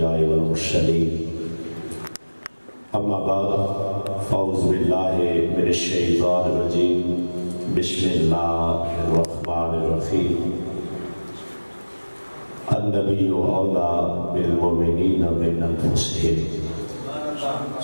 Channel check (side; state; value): both; inverted; correlation -1.00